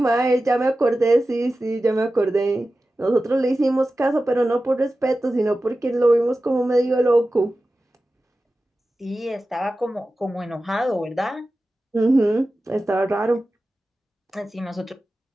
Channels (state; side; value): normal; both; correlation 0.94